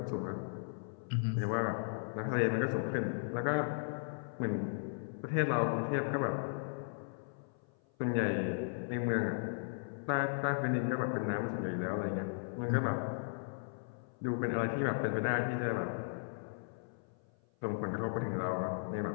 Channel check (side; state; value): right; silent; 53 dB below the other